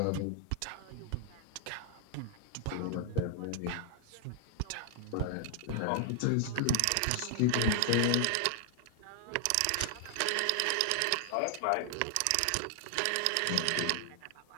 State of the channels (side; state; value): both; different; correlation 0.00